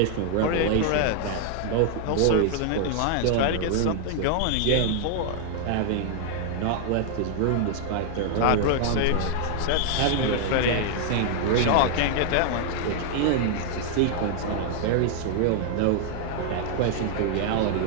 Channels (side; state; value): both; different; correlation 0.00